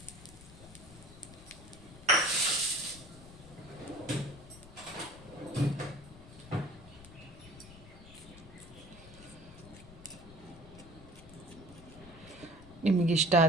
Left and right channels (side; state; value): left; noise; rumble, 18 dB below the sound